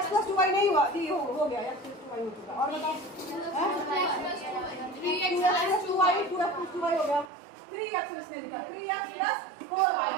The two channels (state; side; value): drops out; left; at 7.3 s